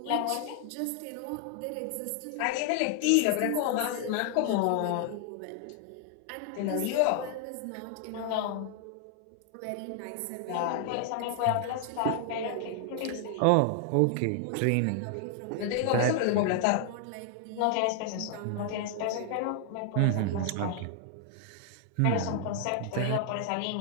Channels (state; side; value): different; both; correlation 0.00